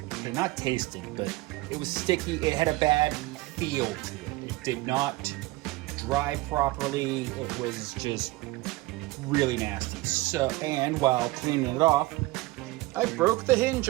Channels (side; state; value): left; quieter; 20.5 dB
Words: Okay, not tasted, but it was sticky. It had a bad feel to it. It did not dry properly. It was just really nasty. So, and while cleaning it off, I broke the hinge